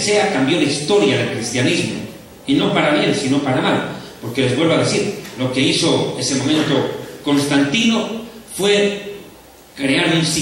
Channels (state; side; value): identical; both; correlation 1.00